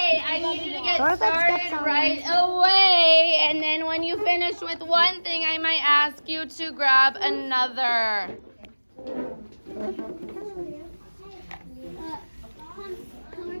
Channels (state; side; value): inverted; both; correlation -1.00